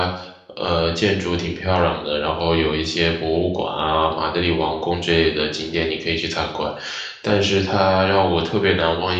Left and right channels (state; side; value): identical; both; correlation 1.00